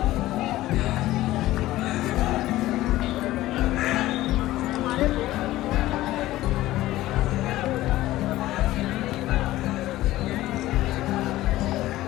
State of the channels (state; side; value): quieter; right; 16.1 dB